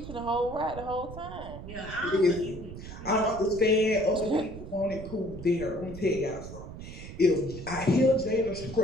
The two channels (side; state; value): right; noise; rumble, 12 dB below the sound